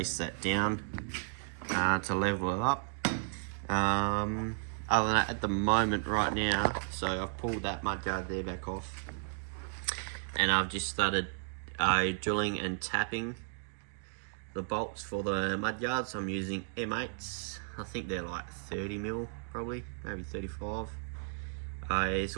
that down to level it up. Other than that, at the moment right now, so I've pulled that mudguard there back off, and I've just started drilling and tapping the bolts for the mudguards. I'm using M8s. I think they're like 30mm, probably, maybe 35.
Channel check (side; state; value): left; silent; digital silence